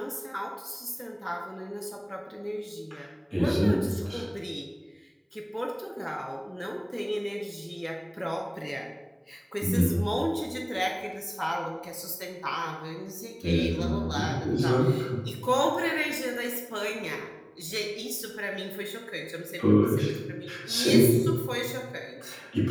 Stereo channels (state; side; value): identical; both; correlation 1.00